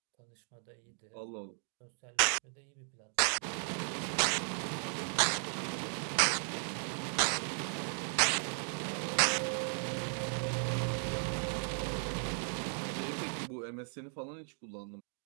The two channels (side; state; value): left; silent; 54 dB below the other